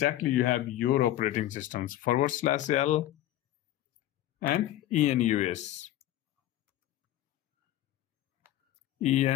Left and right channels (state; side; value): quieter; right; 13.8 dB